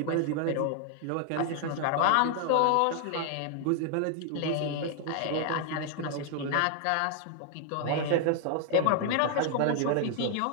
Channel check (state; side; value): different; both; correlation 0.00